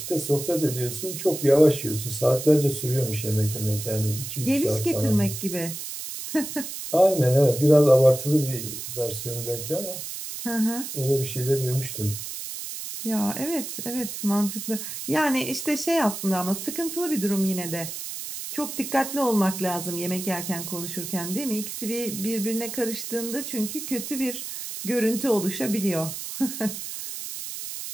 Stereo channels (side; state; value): right; noise; hiss, 7 dB below the sound